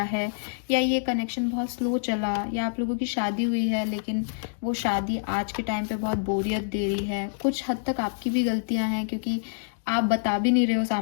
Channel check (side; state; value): right; silent; digital silence